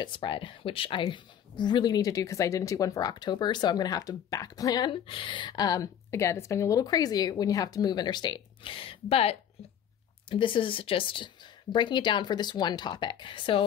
spread, which I really need to do because I didn't do one for October, so I'm going to have to back plan. Again, it's been a little crazy when you have to move interstate. But this is just breaking it down for this one topic.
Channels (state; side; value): quieter; right; 9.3 dB